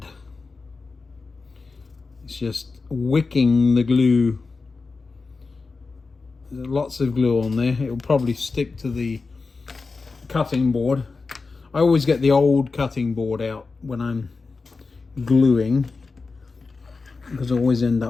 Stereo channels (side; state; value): right; quieter; 4.2 dB